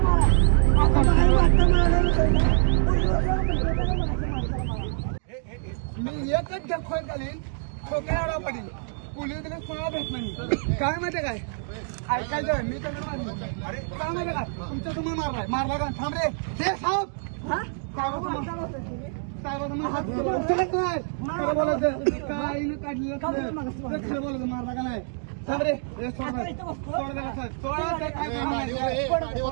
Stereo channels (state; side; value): silent; left; 61 dB below the other